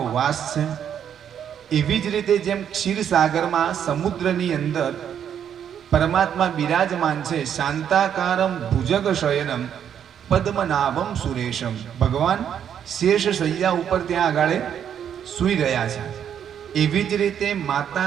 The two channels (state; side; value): quieter; left; 8.9 dB